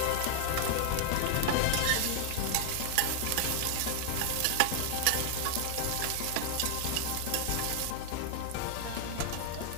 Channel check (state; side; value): different; both; correlation -0.01